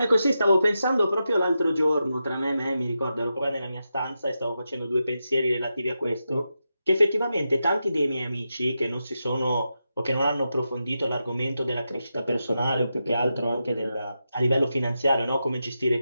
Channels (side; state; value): both; inverted; correlation -0.88